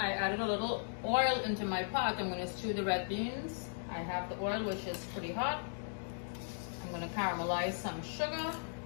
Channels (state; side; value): silent; right; digital silence